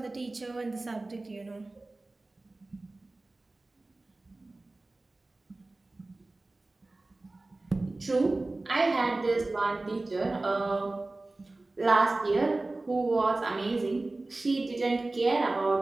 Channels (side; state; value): left; quieter; 3.0 dB